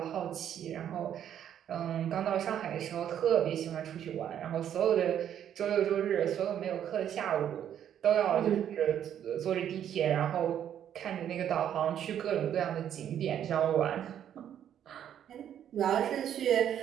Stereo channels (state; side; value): quieter; left; 9.9 dB